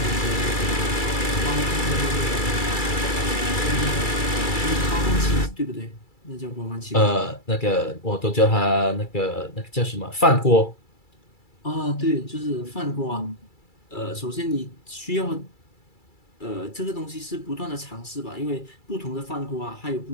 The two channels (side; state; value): right; late; 2.3 ms